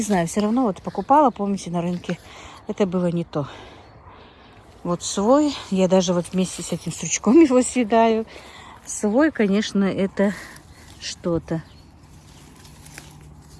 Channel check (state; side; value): identical; both; correlation 1.00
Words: знаю, все равно вот покупала, помните, на рынке. Это было не то. Вот свой, я даже вот вместе с этим стручком его съедаю. Свой, конечно, это что-то.